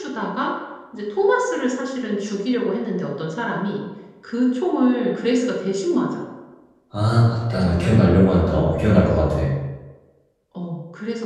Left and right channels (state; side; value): identical; both; correlation 1.00